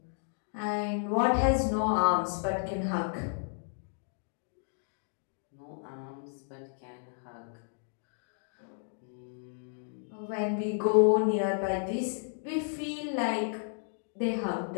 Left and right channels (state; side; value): silent; right; digital silence